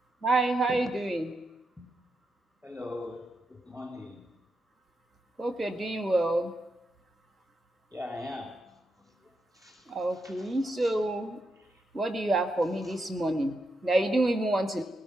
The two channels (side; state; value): both; normal; correlation 0.84